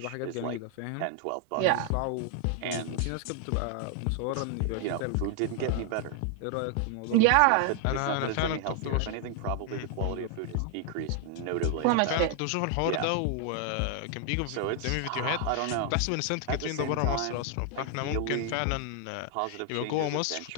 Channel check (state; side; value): different; both; correlation 0.00